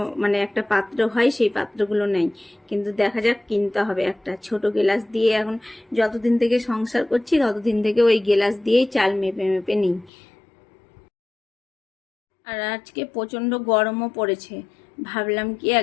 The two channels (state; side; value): drops out; right; at 10.1 s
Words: মানে একটা পাত্র হয়, সেই পাত্রগুলো নেই, কিন্তু দেখা যাক কিনতে হবে একটা ছোট গেলাস দিয়ে। এখন যতদিন থেকে সংসার করছি ততদিন থেকে ওই গেলাস দিয়েই চাল মেপে মেপে নিই। আর আজকে প্রচণ্ড গরমও পড়েছে, ভাবলাম কি